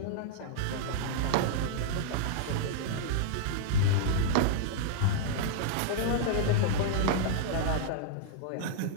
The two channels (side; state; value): both; different; correlation -0.01